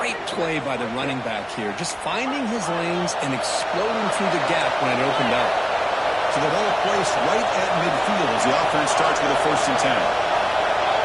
play by the running back here. Just finding his lanes and exploding through the gap when it opened up. So the ball placed right at midfield as the offense starts with a 1st and 10.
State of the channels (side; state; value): both; identical; correlation 1.00